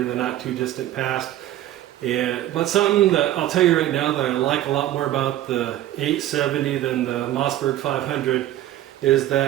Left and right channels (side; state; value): left; quieter; 13.5 dB